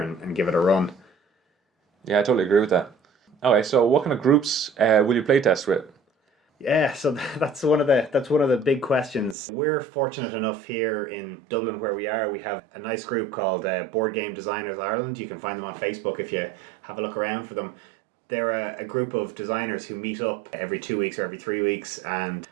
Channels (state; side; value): drops out; left; at 9.3 s